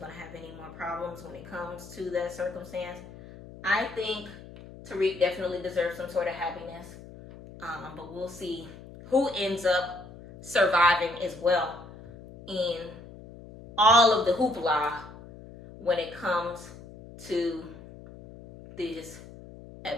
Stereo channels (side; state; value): left; noise; hum, 17 dB below the sound